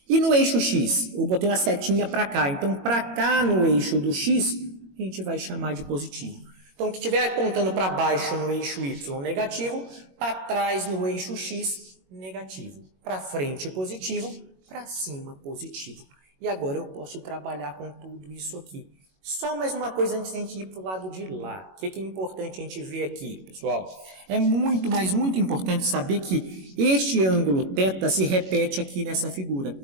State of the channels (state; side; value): late; left; 21 ms